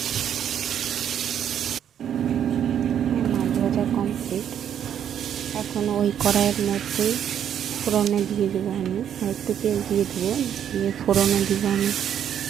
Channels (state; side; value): quieter; left; 9.3 dB